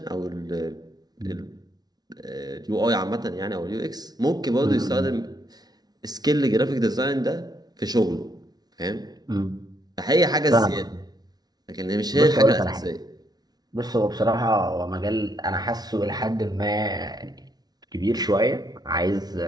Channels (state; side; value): late; left; 0.19 ms